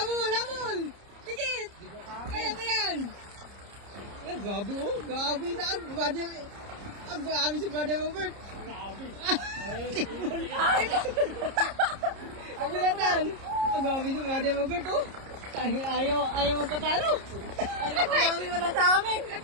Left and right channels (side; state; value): left; late; 30 ms